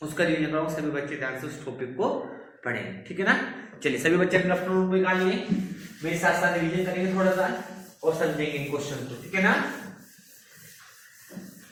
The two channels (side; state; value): both; identical; correlation 1.00